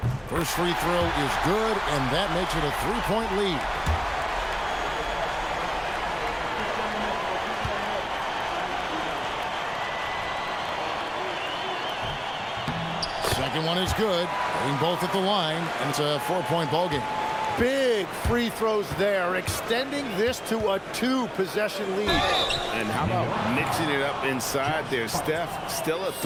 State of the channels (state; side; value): identical; both; correlation 1.00